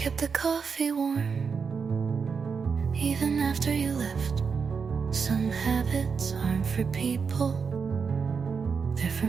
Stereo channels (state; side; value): quieter; left; 5.7 dB